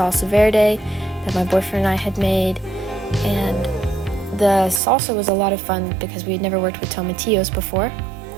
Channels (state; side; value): drops out; left; at 4.8 s